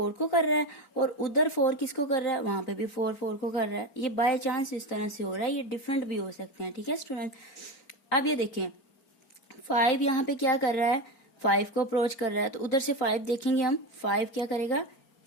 को कर रहा है, और उधर 4 किसको कर रहा है, वहां पे भी 4 4 को कर रहा है। ये बाय चांस इस तरह से हो रहा है, ये डिफरेंट भी हो सकते हैं, ठीक है स्टूडेंट। अब ये देखें, 5 यहाँ पे क्या कर रहा है, 5 को अप्रोच कर रहा है, तो उधर से 5 देखेंगे हम, 5 क्या करेगा,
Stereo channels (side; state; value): right; late; 4.4 ms